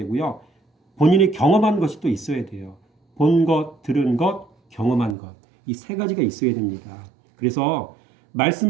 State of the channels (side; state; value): left; drops out; at 5.2 s